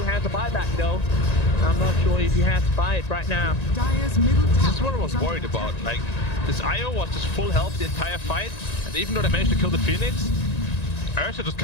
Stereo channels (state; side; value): late; right; 1.9 ms